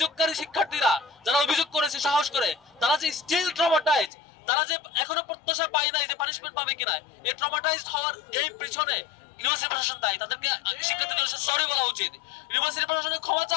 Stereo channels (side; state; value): right; drops out; at 4.1 s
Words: শিক্ষার্থীরা যারা অভিযোগ করেছে সাহস করে, তারা যে স্টিল ট্রমাটাইজ, তারা যে এখনো প্রত্যাশা পায় নাই যে পানিশমেন্ট পাবে কিনা, এই ট্রমাটাইজড হওয়ার এই পিছনে ইউনিভার্সিটি প্রশাসন দায়ী। তাদেরকে শিক্ষার্থীদের সরি বলা উচিত, ইউনিভার্সিটি প্রশাসনের ক্ষমা